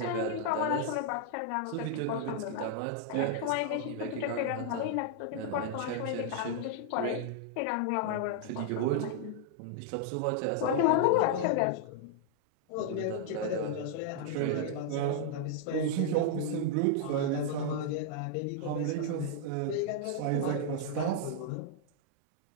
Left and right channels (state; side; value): different; both; correlation -0.01